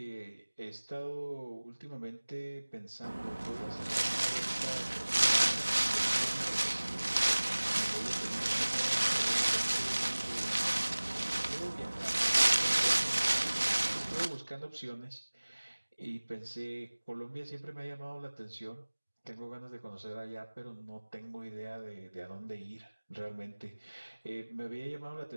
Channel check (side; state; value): both; inverted; correlation -1.00